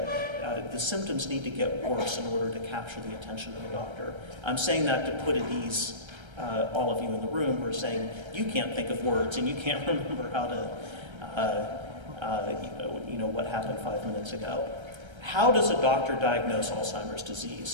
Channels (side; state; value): left; late; 1.3 ms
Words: the symptoms need to get worse in order to capture the attention of the doctor. I'm saying that to put at ease all of you in the room who are saying, you can't think of words and you can't remember how to, what happened 5 minutes ago. How does a doctor diagnose Alzheimer's